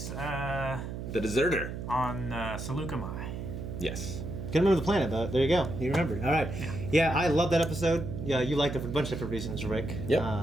The Deserter. on Seleucami. Yes. Couldn't remember the planet, but there you go. You remembered. All right. Yeah, I love that episode. Yeah, you liked it for a bunch of different reasons, Rick.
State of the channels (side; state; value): right; noise; hum, 6 dB below the sound